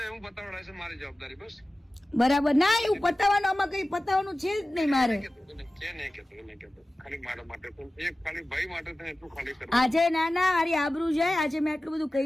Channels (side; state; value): both; normal; correlation 0.96